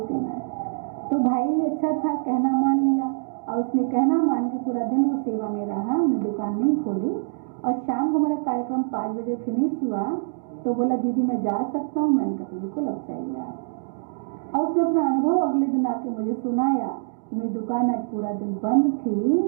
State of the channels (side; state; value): left; silent; digital silence